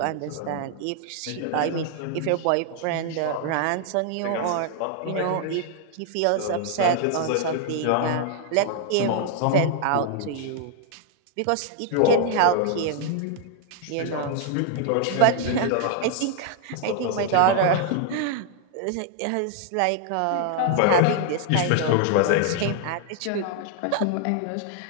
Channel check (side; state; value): both; different; correlation 0.00